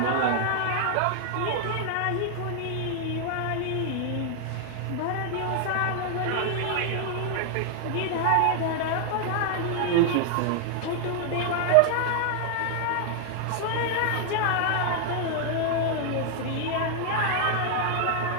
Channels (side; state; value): both; different; correlation 0.00